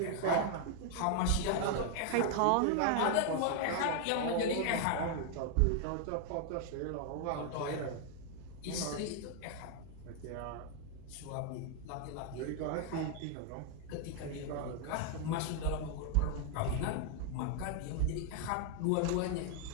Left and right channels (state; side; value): different; both; correlation 0.00